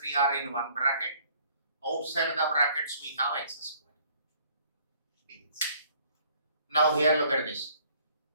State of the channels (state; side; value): inverted; both; correlation -0.59